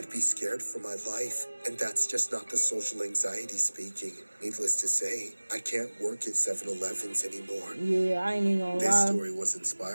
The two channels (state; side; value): inverted; both; correlation -1.00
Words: be scared for my life. And that's just not the social anxiety speaking. Needless to say, I can't work at 7-Elevens anymore. Yeah, I ain't even gonna This lie. story was